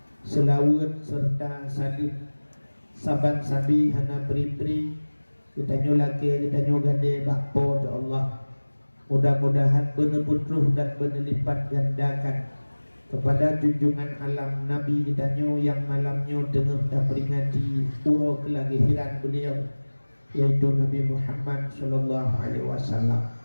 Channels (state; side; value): inverted; both; correlation -1.00